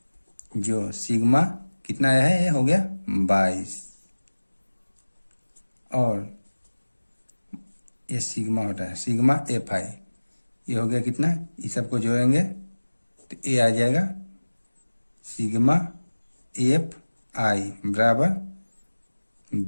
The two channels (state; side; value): inverted; both; correlation -1.00